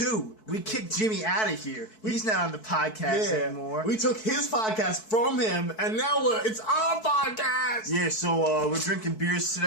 We kicked Jimmy out of here. He's not on the podcast anymore. We took his podcast from him, and now it's our podcast. Yeah, so we're drinking beers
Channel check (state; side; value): late; right; 4.6 ms